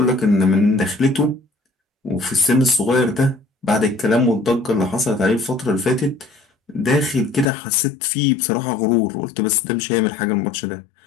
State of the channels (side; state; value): right; drops out; at 7.5 s